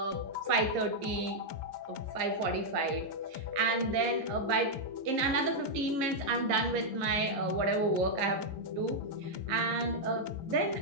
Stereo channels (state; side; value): late; left; 11 ms